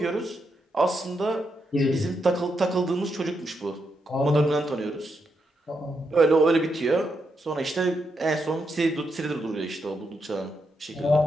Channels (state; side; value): normal; both; correlation 0.82